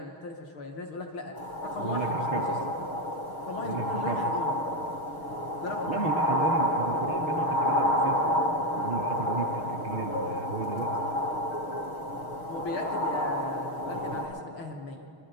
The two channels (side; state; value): right; late; 6.4 ms